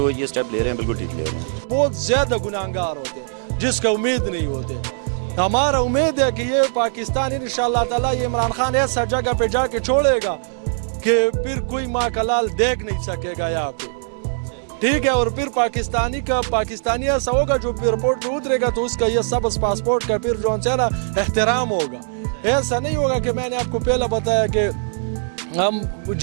یہ اسٹیپ لے رہے ہیں بالکل ٹھیک لے رہے ہیں. بہت زیادہ گناہگار ہوتے ہیں جس کا امید نہیں ہوتے. ہمارا امید ہے کہ یہ پاکستان انشاءاللہ تعالیٰ یہ عمران خان ایسا جگہ پہ جا کے چھوڑے گا کہ پھر کوئی ماں کا لال دیکھ نہیں سکے گا یہاں پہ. ٹھیک ہے, اور پھر پاکستانی ایسا ہوگا جو ایئرپورٹ پہ اترے گا تو اس کا یہ سبز پاسپورٹ کا پھر جو ہے نا احترام ہوگا. ایسا نہیں ہوگا کہ میں نے آپ کو پہلے بتایا کہ ہم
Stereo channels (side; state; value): left; silent; digital silence